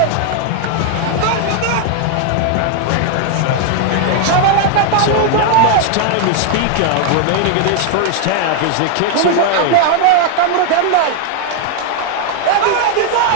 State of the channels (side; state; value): both; different; correlation 0.00